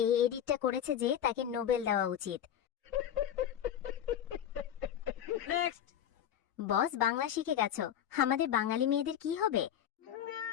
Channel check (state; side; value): quieter; right; 9.9 dB